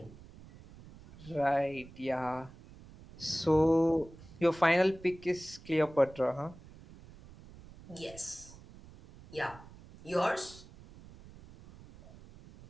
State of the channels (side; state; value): right; noise; rumble, 20 dB below the sound